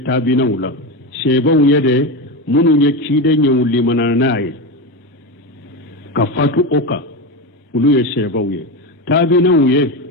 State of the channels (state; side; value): normal; both; correlation 0.17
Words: tabina wula sheba wuye de munye ciden ye wuli mananaye ka fatu oka uluye sheba wuye tabina wuye